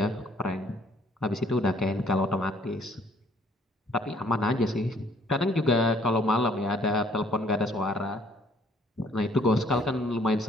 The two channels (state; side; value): normal; both; correlation 0.61